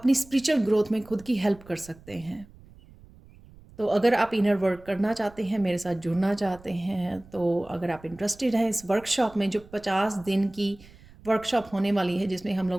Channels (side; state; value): right; noise; rumble, 23 dB below the sound